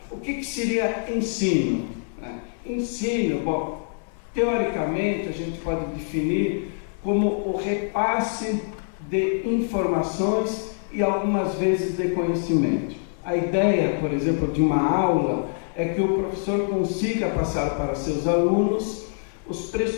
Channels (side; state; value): right; silent; 58 dB below the other